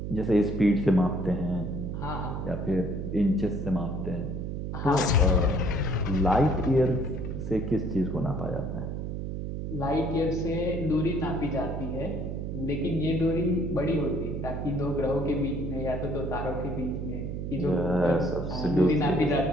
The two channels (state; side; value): noise; right; hum, 4 dB below the sound